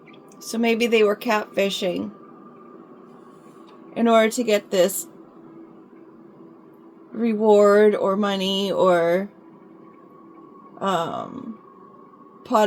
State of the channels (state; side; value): identical; both; correlation 1.00